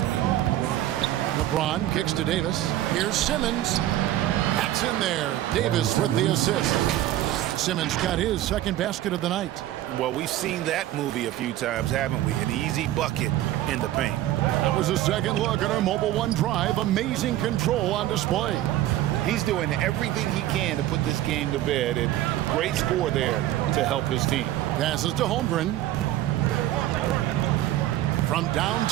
LeBron kicks to Davis. Here's Simmons. That's in there. Davis with the assist. Simmons got his second basket of the night. Well, we've seen that movie a few times, haven't we? An easy bucket in the paint. That was a second look at our Mobile One drive. Amazing control on display. He's doing everything he can to put this game to bed, and great score there to help his team. Passes to Holmgren. From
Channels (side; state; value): left; quieter; 13.9 dB